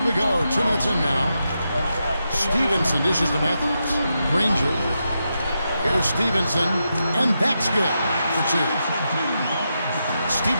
we go. 2 minutes in now. Stevenson dishes to Matthews. Granger. Here's Stevenson, and that's good for 2.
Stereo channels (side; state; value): both; inverted; correlation -0.86